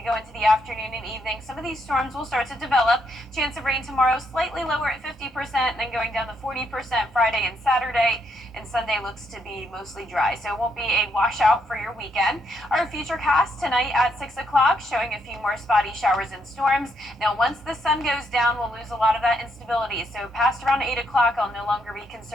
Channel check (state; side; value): normal; both; correlation 0.76